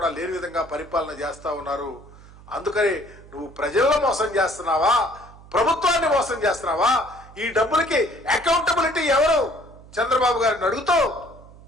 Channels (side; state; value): right; noise; hum, 21 dB below the sound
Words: లేని విధంగా పరిపాలన చేస్తా ఉన్నారు. అందుకని నువ్వు ప్రజలను మోసం చేస్తున్నావా, ప్రభుత్వాన్ని మోసం చేస్తున్నావా? ఈ డబ్బులకి అకౌంటబిలిటీ ఎవరు చంద్రబాబు గారిని అడుగుతూ